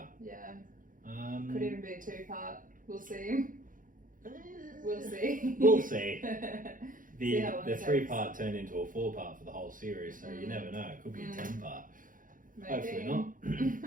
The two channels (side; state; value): left; late; 0.39 ms